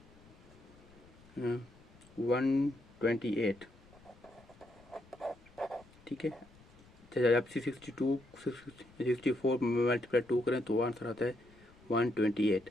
128। ठीक है, जब 64 मल्टीप्लाई 2 करें तो आंसर आता है 128।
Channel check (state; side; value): noise; left; rumble, 25 dB below the sound